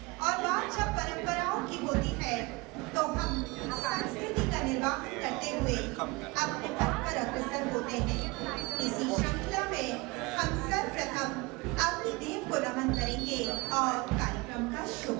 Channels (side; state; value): left; quieter; 24.9 dB